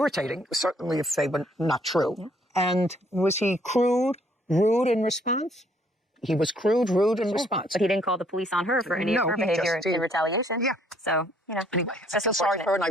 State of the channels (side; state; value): both; normal; correlation 0.65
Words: certainly if they were not true. Yeah. And was he crude, rude in response? He was crude, rude in response. But he didn't call the police on her for any of her he behavior just did. in retaliation. Yeah. So, Anyway, I just feel sorry for her, and I